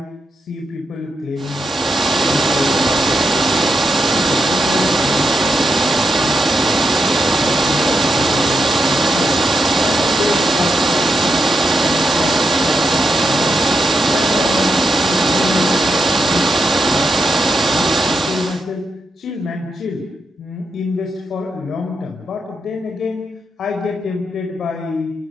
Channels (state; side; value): normal; both; correlation 0.85